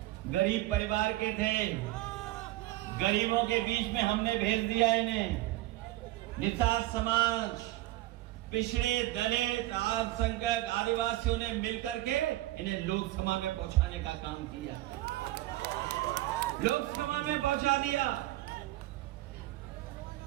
गरीब परिवार के थे, गरीबों के बीच में हमने भेज दिया इन्हें। निषाद समाज, पिछड़े, दलित, अल्पसंख्यक, आदिवासियों ने मिलकर के इन्हें लोकसभा में पहुंचाने का काम किया, लोकसभा में पहुंचा दिया।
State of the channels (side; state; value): left; quieter; 17.3 dB